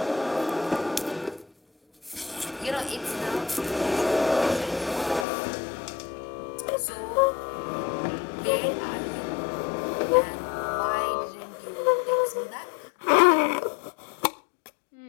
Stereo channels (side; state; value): right; drops out; at 5.2 s